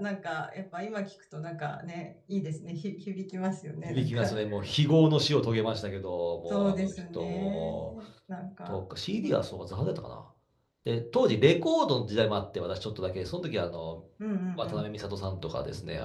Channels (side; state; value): both; identical; correlation 1.00